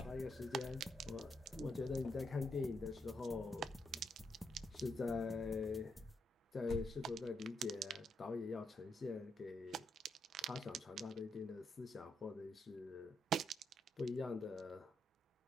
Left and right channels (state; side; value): normal; both; correlation 0.79